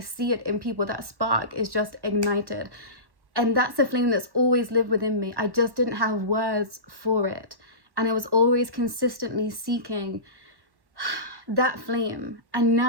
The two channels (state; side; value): late; left; 1.1 ms